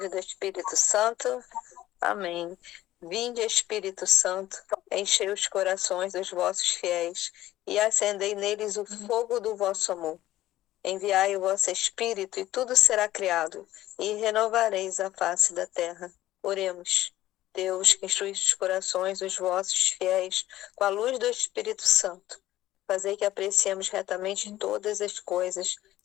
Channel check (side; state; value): right; quieter; 14.8 dB